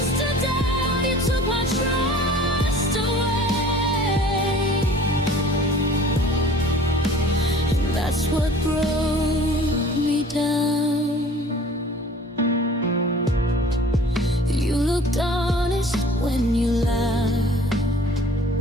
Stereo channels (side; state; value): both; normal; correlation 0.48